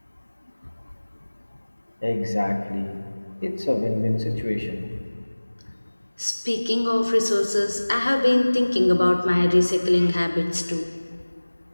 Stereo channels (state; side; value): inverted; both; correlation -1.00